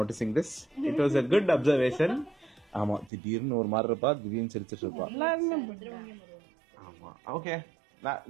this. It was a good observation. ஆமா, திடீர்னு ஒரு மாதிரி இருப்பா, திடீர்னு சிரிச்சிட்டு இருப்பா. எல்லாருமே ஆமா, okay,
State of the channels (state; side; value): drops out; left; at 3.1 s